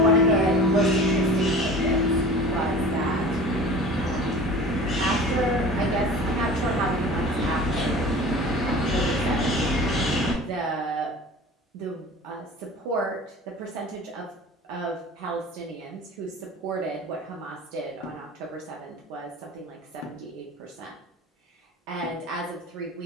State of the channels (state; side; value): normal; both; correlation 0.39